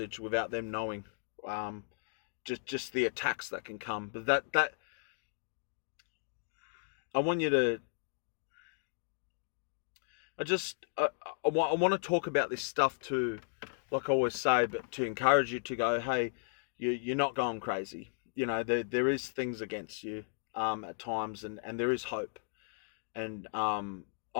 without them knowing, just the attacks that can come. But that I want you to. I want to talk about this stuff too, like I always say, but to encourage you to go, hey, you're not going crazy. There is things against you at times, and there is hope. And I'm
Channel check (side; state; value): right; silent; digital silence